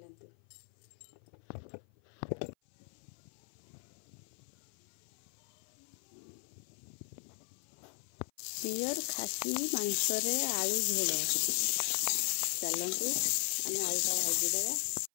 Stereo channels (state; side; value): silent; right; 53 dB below the other